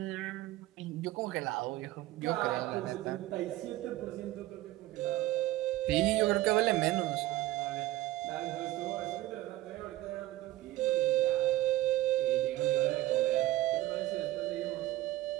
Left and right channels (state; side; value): quieter; left; 16.1 dB